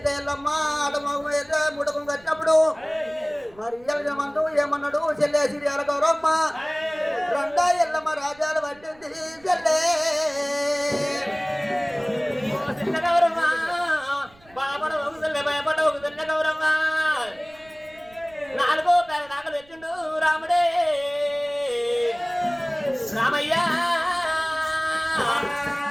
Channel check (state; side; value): noise; right; rumble, 27 dB below the sound